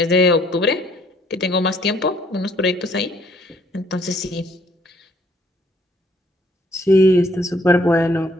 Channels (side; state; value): both; normal; correlation 0.64